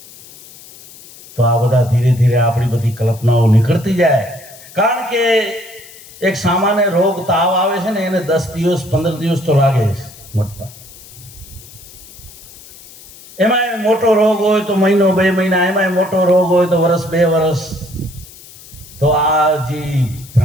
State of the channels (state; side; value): noise; left; hiss, 20 dB below the sound